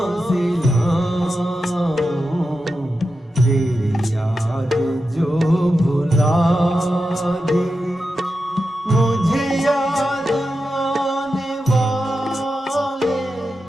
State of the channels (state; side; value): normal; both; correlation 0.90